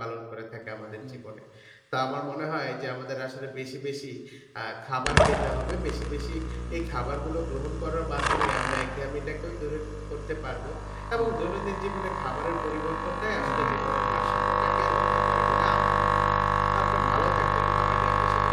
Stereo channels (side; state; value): both; identical; correlation 1.00